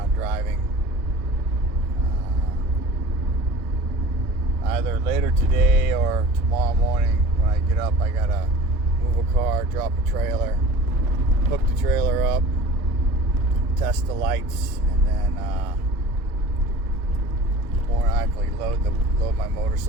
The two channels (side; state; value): both; normal; correlation 0.41